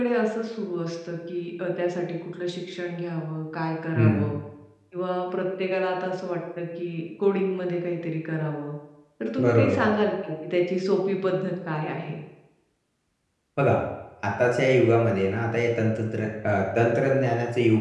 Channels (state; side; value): identical; both; correlation 1.00